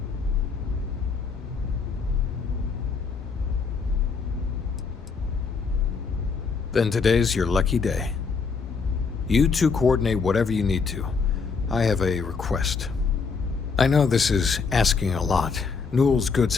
Then today's your lucky day. You two coordinate whatever you need to. I have a request. I know this is asking a lot. Newell's Goods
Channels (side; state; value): right; quieter; 5.1 dB